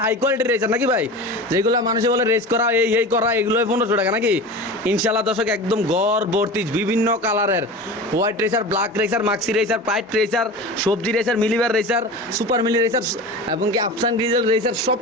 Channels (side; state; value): both; normal; correlation 0.32